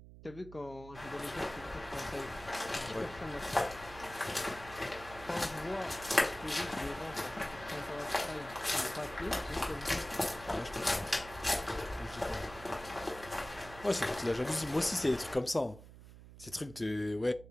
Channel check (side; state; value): right; noise; hum, 17 dB below the sound